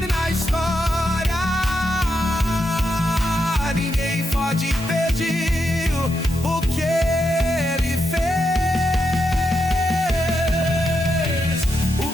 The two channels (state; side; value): normal; both; correlation 0.84